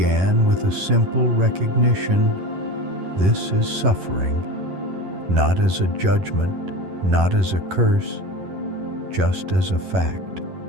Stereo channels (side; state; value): left; late; 11 ms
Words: with a simple recognition: this is suffering, not as a judgment, not as a curse, just as a fact.